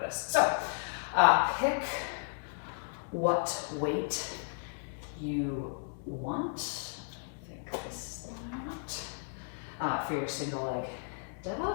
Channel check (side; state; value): right; silent; digital silence